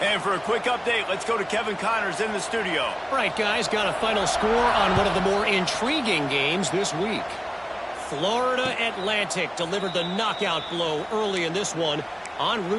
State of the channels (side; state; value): both; identical; correlation 1.00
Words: for a quick update, let's go to Kevin Connors in the studio. All right, guys, got a final score on one of the more intriguing games this week. Florida Atlantic delivered the knockout blow early in this one, en